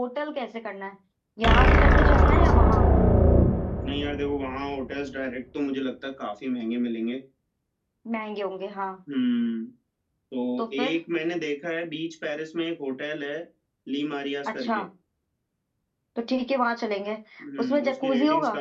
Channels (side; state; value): both; identical; correlation 1.00